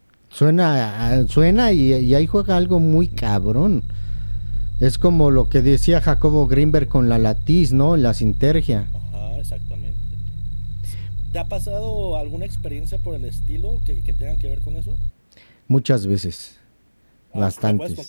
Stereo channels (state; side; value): inverted; both; correlation -1.00